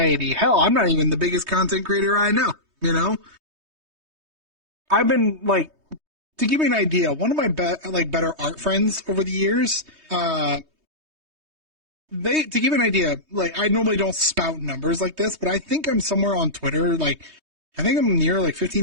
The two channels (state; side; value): late; left; 3.2 ms